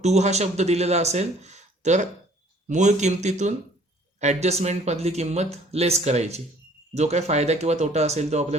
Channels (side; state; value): both; normal; correlation 0.56